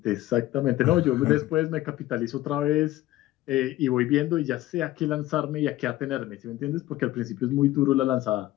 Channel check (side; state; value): right; quieter; 15.8 dB